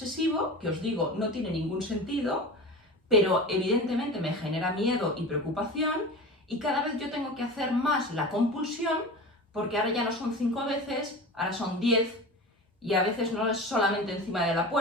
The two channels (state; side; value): normal; both; correlation 0.31